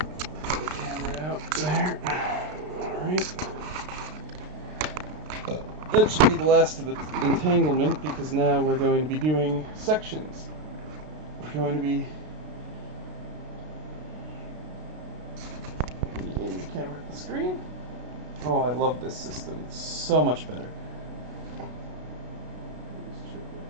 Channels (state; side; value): late; left; 33 ms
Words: get the camera out there. Alright. That should be the last of the entanglement, because now we're going to be doing sections. We're going to be aiming the camera at the screen. Oh, I love this system. It's so much better.